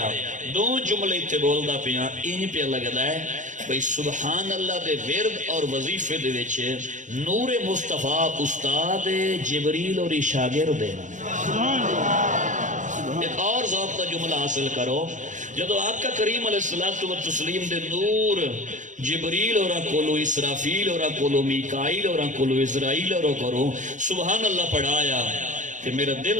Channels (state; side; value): late; left; 0.36 ms